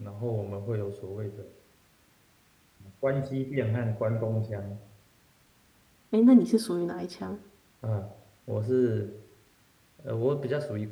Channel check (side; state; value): both; identical; correlation 1.00